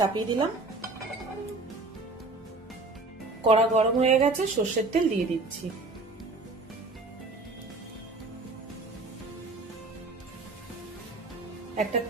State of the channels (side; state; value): left; quieter; 3.3 dB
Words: দিলাম, কড়া গরম হয়ে গেছে, সর্ষের তেল দিয়ে দিচ্ছি। একটা